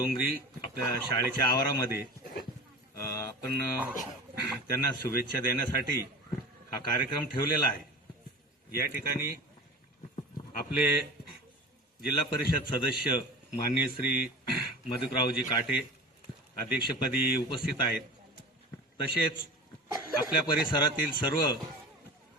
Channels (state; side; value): normal; both; correlation 0.33